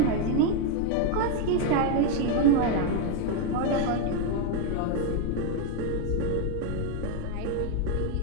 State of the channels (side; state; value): both; different; correlation 0.01